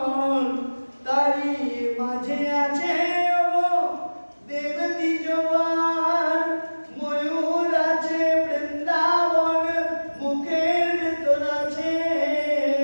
তারি মাঝে আছে দেব দ্বিজবার, ময়ূর আছে বৃন্দাবন মুখের ভেতর আছে,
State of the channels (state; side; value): inverted; both; correlation -1.00